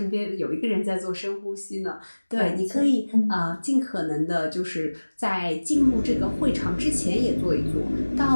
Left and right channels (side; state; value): both; inverted; correlation -1.00